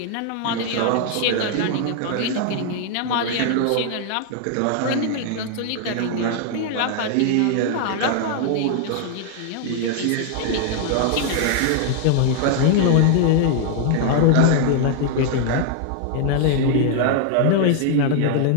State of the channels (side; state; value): both; different; correlation 0.00